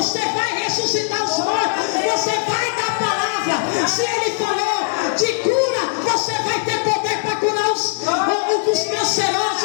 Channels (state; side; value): silent; right; digital silence